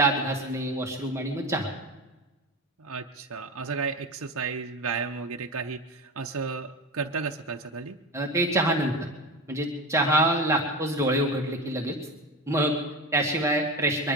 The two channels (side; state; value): both; normal; correlation 0.24